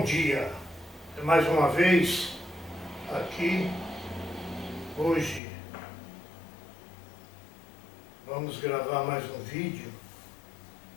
dia. Mais uma vez aqui, hoje vamos gravar mais um vídeo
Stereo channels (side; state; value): right; drops out; at 5.4 s